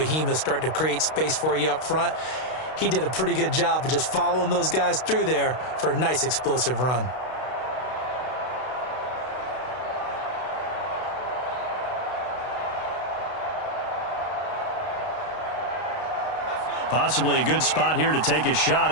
start to create space for you up front. He did a pretty good job of just following those guys through there for a nice explosive run. Possibly a good spot here to take a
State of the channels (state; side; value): late; right; 32 ms